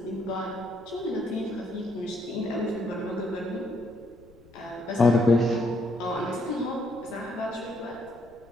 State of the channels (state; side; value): noise; left; rumble, 25 dB below the sound